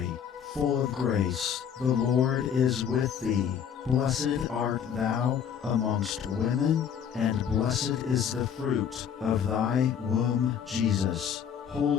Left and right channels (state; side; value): quieter; right; 8.1 dB